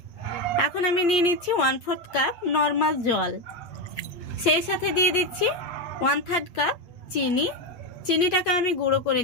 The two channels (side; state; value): right; late; 8.3 ms